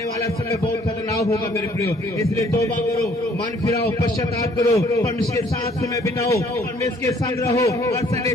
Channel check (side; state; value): both; normal; correlation 0.60